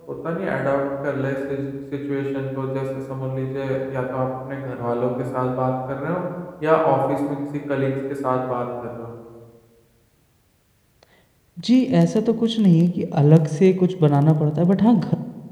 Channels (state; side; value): identical; both; correlation 1.00